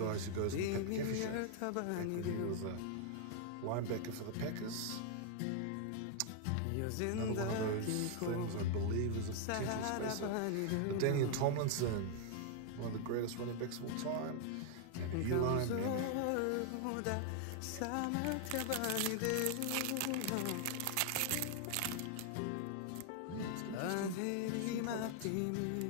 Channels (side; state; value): both; different; correlation 0.00